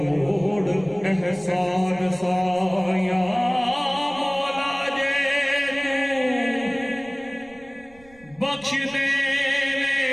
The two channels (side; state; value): right; noise; rumble, 26 dB below the sound